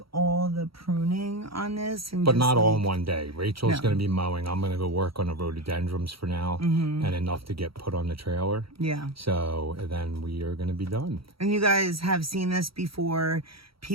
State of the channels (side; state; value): left; late; 0.75 ms